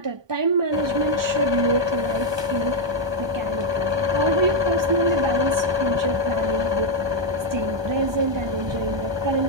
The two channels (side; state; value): left; late; 1.2 ms